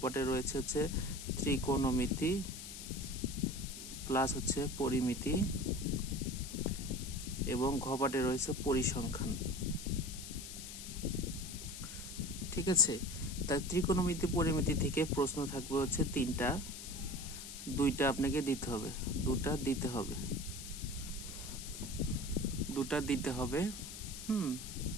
পার্টে রয়েছে ত্রিকোণমিতি প্লাস পরিমিতি এবং ঘ পার্টে রয়েছে পরিসংখ্যান। ঠিক আছে, তাই ত্রিকোণমিতি পরিমিতি থেকে প্রশ্ন থাকবে তিনটা, দুইটা আপনাকে দিতে হবে, দুটা দিতে হবে।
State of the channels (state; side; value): noise; left; hiss, 10 dB below the sound